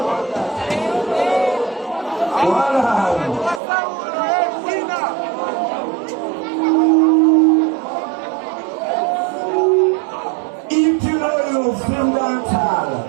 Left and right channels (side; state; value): left; drops out; at 3.6 s